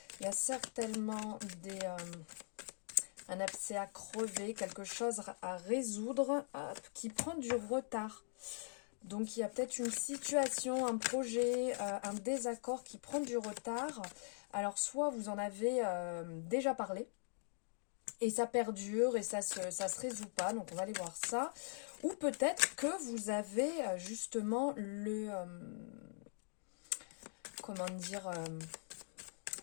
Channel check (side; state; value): right; silent; digital silence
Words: Il y a certainement un abcès à crever, quelque chose à résoudre qui prend du retard. Donc il y a peut-être une situation, un projet, un désaccord qui prend du retard. Alors soit vous en avez déjà parlé, et ça perdure et ça se résout pas, donc on va aller voir ça. Ou peut-être que vous avez justement comment dire,